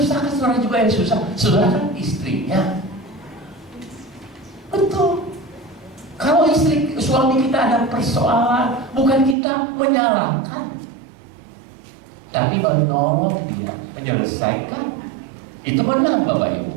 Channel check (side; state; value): left; drops out; at 9.3 s